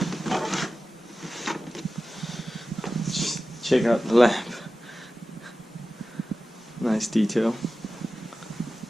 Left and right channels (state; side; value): normal; both; correlation 0.95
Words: Check out the lamp. Nice detail.